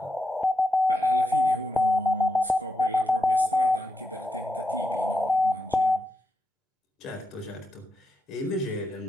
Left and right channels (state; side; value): normal; both; correlation 0.85